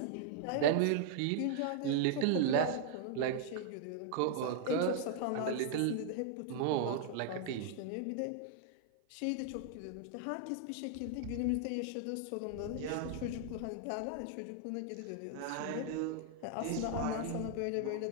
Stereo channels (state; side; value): different; both; correlation 0.00